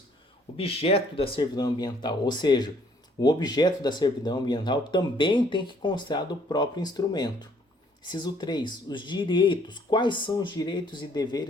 Objeto da servidão ambiental, ou seja, o objeto da servidão ambiental também tem que constar do próprio instrumento. Inciso 3. Os direitos. Quais são os direitos e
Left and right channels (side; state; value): both; normal; correlation 0.63